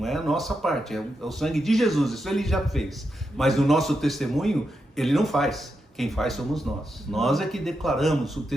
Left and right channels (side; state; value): both; normal; correlation 0.86